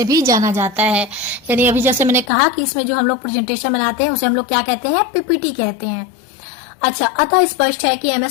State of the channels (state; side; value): drops out; right; at 2.3 s